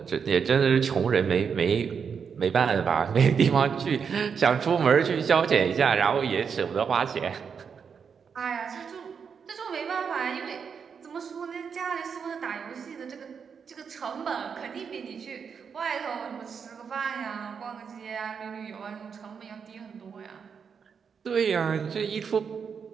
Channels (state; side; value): quieter; left; 6.5 dB